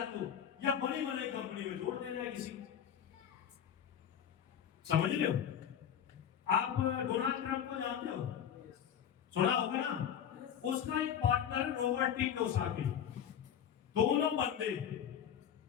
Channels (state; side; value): quieter; right; 8.9 dB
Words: या बड़ी बड़ी कंपनी में जोड़ देना है किसी। समझ रहे हो? आप डोनाल्ड ट्रंप को जानते हो, सुना होगा ना? उसका एक पार्टनर रॉबर्ट टी कियोसाकी। दोनों बंदे